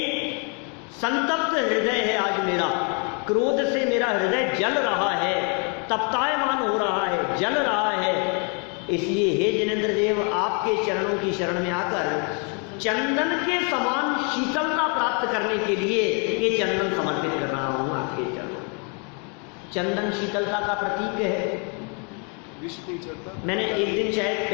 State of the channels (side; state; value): right; quieter; 37.2 dB